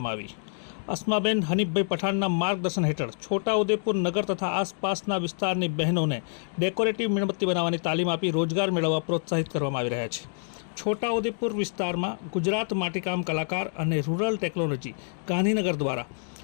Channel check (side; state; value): right; silent; 60 dB below the other